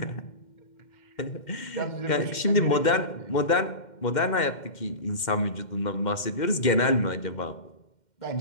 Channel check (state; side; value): late; right; 2.1 ms